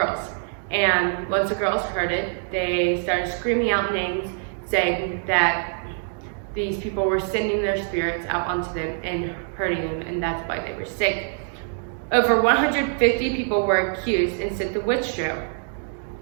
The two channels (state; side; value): silent; left; 62 dB below the other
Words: And once the girls heard it, they started screaming out names, saying that these people were sending their spirits out onto them and hurting them, and that's why they were sick. Over 150 people were accused and sent to witch trial.